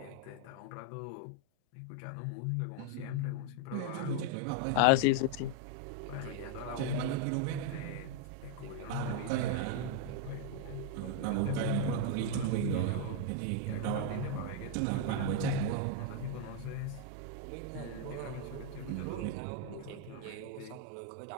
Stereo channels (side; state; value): both; different; correlation 0.00